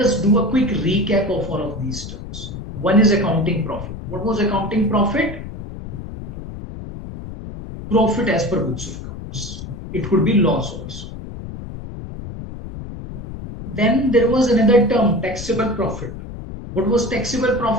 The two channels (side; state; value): left; noise; rumble, 10 dB below the sound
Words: do a quick recap of all of these terms. One is accounting profit. What was accounting profit? Profit as per books of accounts. It could be loss also. Then there was another term, taxable profit. What was taxable